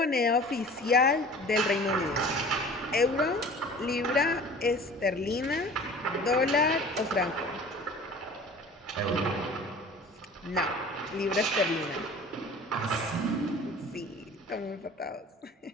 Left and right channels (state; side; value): normal; both; correlation 0.43